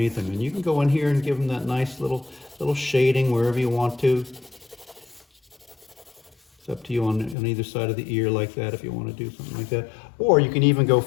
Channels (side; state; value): right; drops out; at 7.4 s